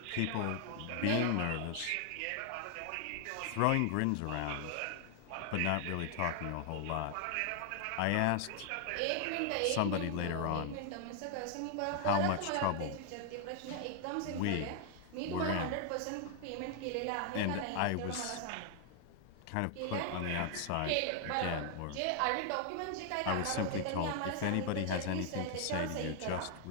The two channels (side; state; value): both; different; correlation 0.00